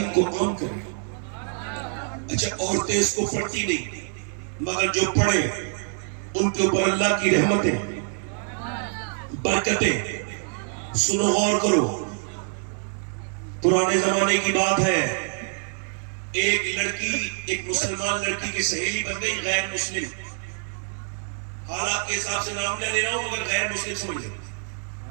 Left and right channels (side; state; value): left; silent; 61 dB below the other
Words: کو عام کرے۔ اچھا عورتیں اس کو پڑھتی نہیں، مگر جو پڑھے ان کے اوپر اللہ کی رحمتیں، برکتیں۔ سنو، غور کرو، پرانے زمانے کی بات ہے، ایک لڑکی، ایک مسلمان لڑکی کی سہیلی بن گئی غیر مسلم، حالات کے حساب سے نام نہ لے رہا ہوں مگر غیر مسلم سمجھ لیں،